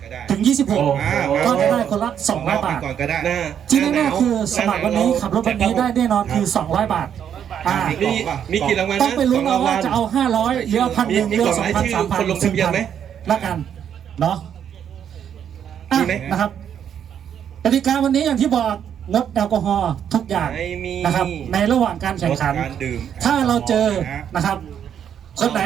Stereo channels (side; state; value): left; quieter; 8.9 dB